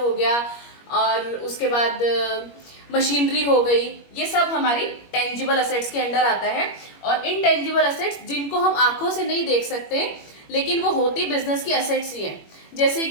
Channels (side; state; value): right; late; 21 ms